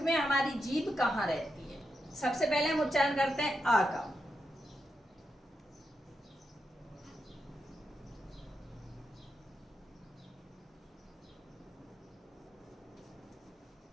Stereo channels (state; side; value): normal; both; correlation 0.85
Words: हमारी जीभ कहाँ रहती है। सबसे पहले हम उच्चारण करते हैं आ का,